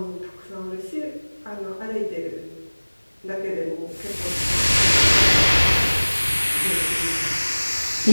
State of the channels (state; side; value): inverted; both; correlation -1.00